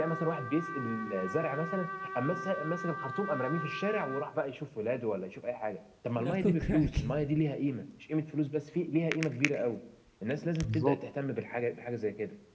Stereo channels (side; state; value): both; identical; correlation 1.00